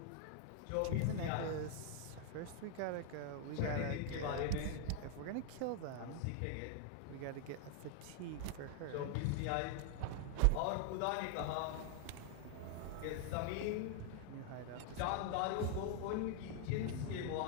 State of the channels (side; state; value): both; different; correlation 0.00